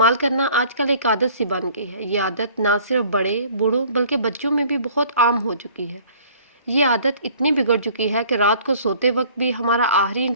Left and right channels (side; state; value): both; inverted; correlation -0.53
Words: करना आजकल एक आदत सी बन गई है। ये आदत ना सिर्फ बड़े बूढ़ों बल्कि बच्चों में भी बहुत आम हो चुकी है। ये आदत इतनी बिगड़ चुकी है कि रात को सोते वक्त भी हमारा आखिरी